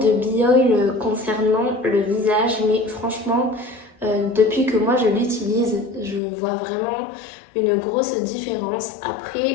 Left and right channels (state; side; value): drops out; right; at 6.2 s